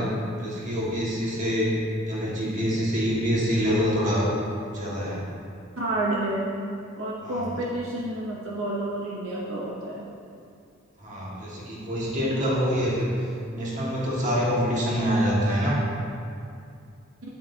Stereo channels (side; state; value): both; normal; correlation 0.53